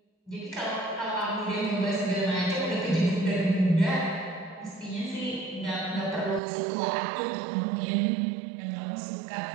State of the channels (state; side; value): drops out; left; at 6.4 s